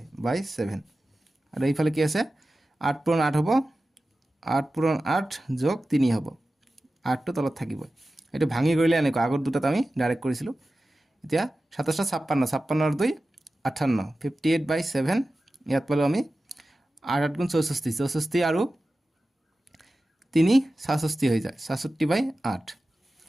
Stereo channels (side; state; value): both; normal; correlation 0.94